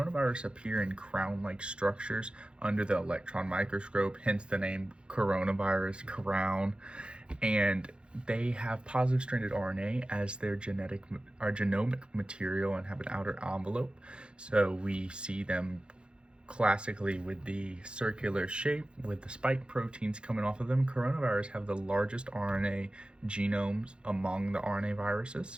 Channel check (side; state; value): left; late; 0.054 ms